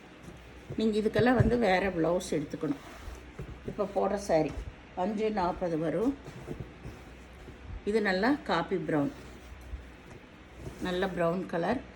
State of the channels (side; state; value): both; identical; correlation 1.00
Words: நீங்கள் இதுக்கெல்லாம் வந்து வேறு ப்ளவுஸ் எடுத்துக்கணும். இப்போ போடுற சாரி 540 வரும். இது நல்லா காப்பி ப்ரௌன், நல்ல ப்ரௌன் கலர்,